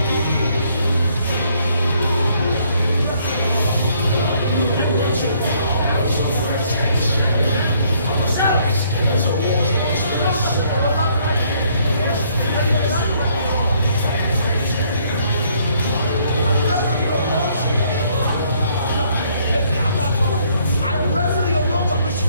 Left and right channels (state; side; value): inverted; both; correlation -0.66